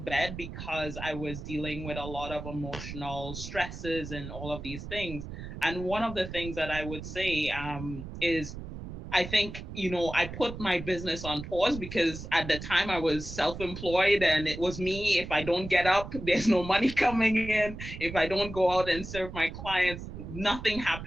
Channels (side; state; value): right; noise; rumble, 10 dB below the sound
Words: bed because I was dealing with a lot of emotional stresses and all of these things. And one of the things that I would say is, I think, I put my business on pause because at the time I was self-employed, and it was me. If I don't get up, there's no money coming in. If I don't go out and serve my clients, nothing